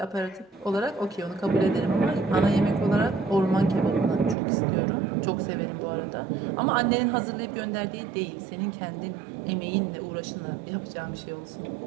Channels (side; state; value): left; drops out; at 4.4 s